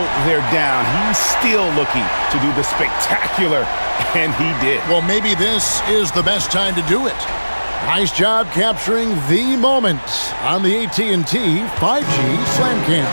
they're down, he's still looking to do the spectacular, and he did. Well, maybe this is the best time to do it. Nice job capturing the moment on the AT&T 5G Slam Cam.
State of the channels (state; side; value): inverted; both; correlation -1.00